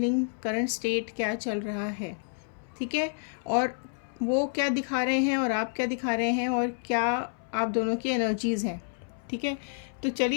करंट स्टेट क्या चल रहा है, ठीक है। और वो क्या दिखा रहे हैं और आप क्या दिखा रहे हैं और क्या आप दोनों की एनर्जीज़ हैं, ठीक है। तो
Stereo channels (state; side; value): silent; right; 58 dB below the other